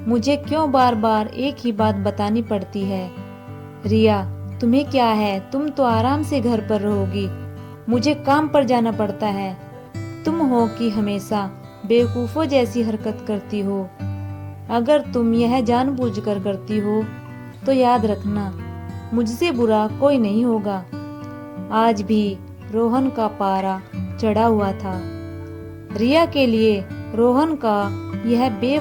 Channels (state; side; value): identical; both; correlation 1.00